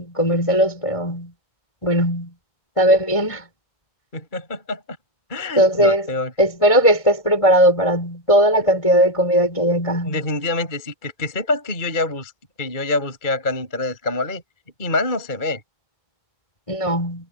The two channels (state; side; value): late; right; 1.6 ms